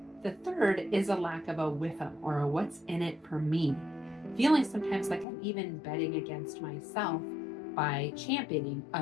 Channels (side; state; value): right; drops out; at 5.2 s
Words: the third is a lack of a WIIFM, or a what's in it for me. Feeling sometimes like I'm even betting against myself by championing